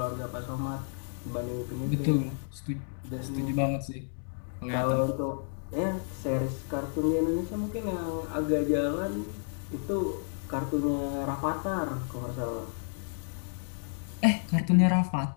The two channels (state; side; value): silent; right; 57 dB below the other